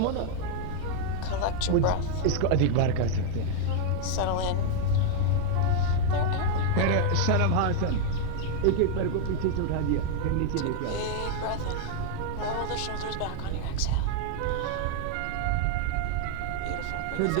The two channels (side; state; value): both; different; correlation -0.01